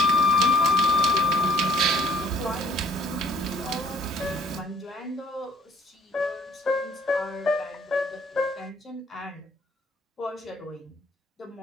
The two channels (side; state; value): both; normal; correlation 0.61